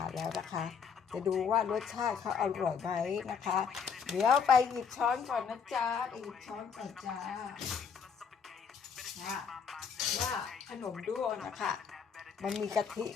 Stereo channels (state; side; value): quieter; right; 6.6 dB